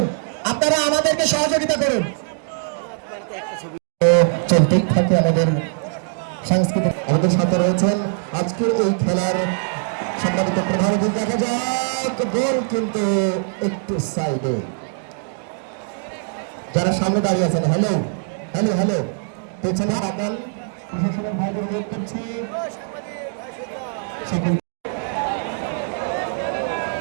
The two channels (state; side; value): silent; left; digital silence